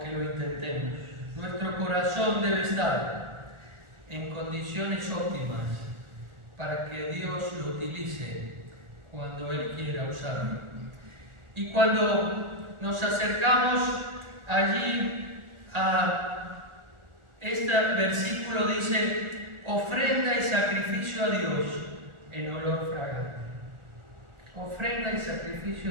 lo intentemos. Nuestro corazón debe estar en condiciones óptimas para que Dios lo utilice cuando Él quiera usarlo. Y cuando nos acercamos allí a este versículo, dice: ofrenda y sacrificio a Dios en olor fragante. Ofrenda y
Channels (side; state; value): left; late; 1.4 ms